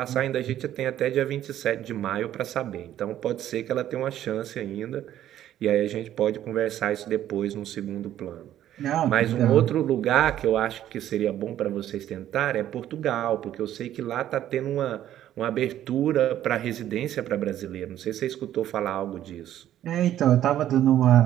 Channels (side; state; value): left; quieter; 11.9 dB